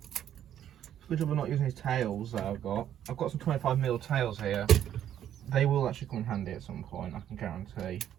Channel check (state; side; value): quieter; left; 10.6 dB